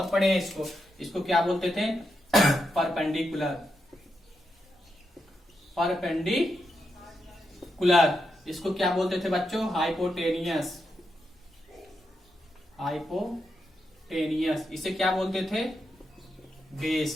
पढ़े हैं। इसको क्या बोलते थे? Perpendicular, perpendicular. इसको क्या बोलते थे बच्चों? Hypotenuse, hypotenuse. इसे क्या बोलते थे? बेस।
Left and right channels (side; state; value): both; normal; correlation 0.84